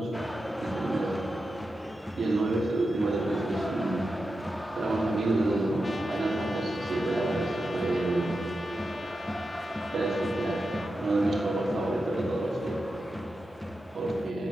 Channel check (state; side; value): normal; both; correlation 0.90